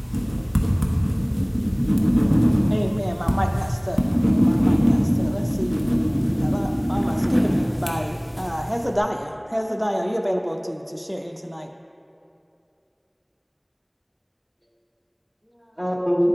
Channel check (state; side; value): identical; both; correlation 1.00